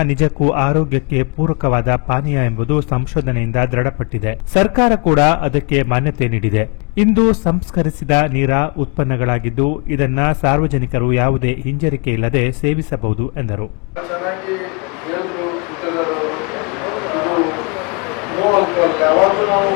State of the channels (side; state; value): right; quieter; 33.9 dB